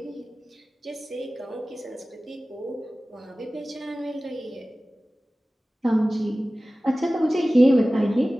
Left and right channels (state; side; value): normal; both; correlation 0.97